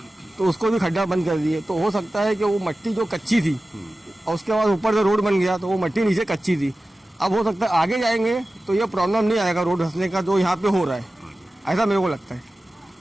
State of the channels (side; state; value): both; normal; correlation 0.95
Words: तो उसको भी खड्डा बंद कर दिए। तो हो सकता है कि वो मिट्टी जो कच्ची थी और उसके बाद ऊपर से रोड बन गया तो वो मिट्टी नीचे कच्ची थी। अब हो सकता है आगे जाएंगे तो ये प्रॉब्लम नहीं आएगा रोड धंसने का जो यहाँ पे हो रहा है, ऐसा मेरे को लगता है।